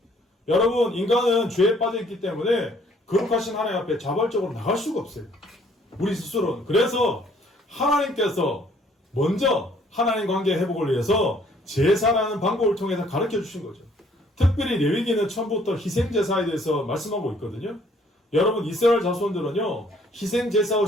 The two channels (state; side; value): normal; both; correlation 0.62